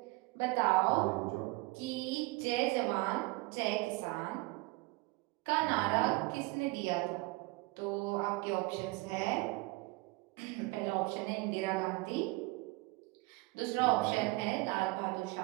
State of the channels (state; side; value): quieter; left; 23.9 dB